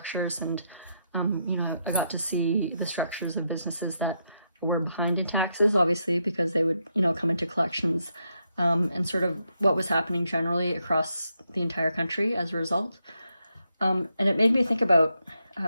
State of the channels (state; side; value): inverted; both; correlation -0.81